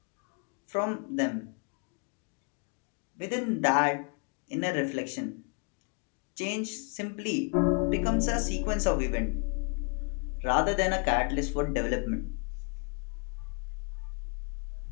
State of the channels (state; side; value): quieter; right; 36.2 dB